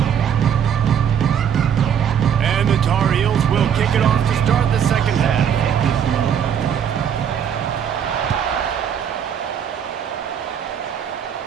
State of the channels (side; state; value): left; quieter; 8.4 dB